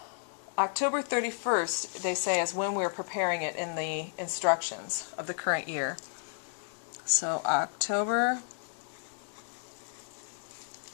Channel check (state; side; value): silent; right; digital silence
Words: 31st, they say, is when we're preparing it in the instructions of the current year. So October